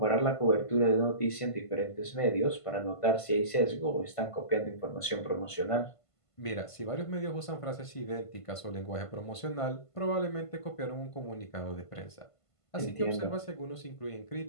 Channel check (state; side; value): late; right; 1.5 ms